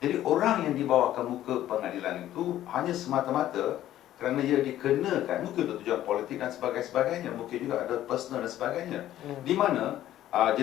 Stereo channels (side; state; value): right; quieter; 13.0 dB